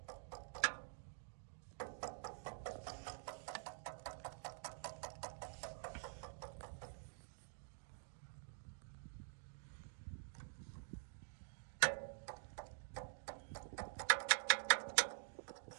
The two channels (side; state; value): left; silent; digital silence